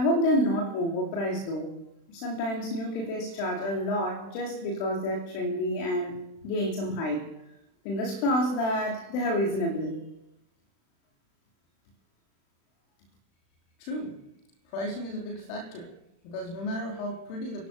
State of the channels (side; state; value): right; late; 36 ms